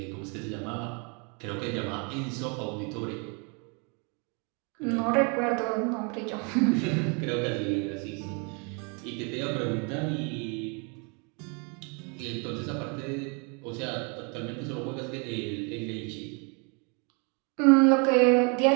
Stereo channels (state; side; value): quieter; left; 34.7 dB